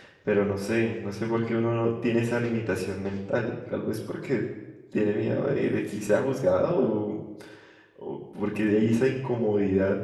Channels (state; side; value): identical; both; correlation 1.00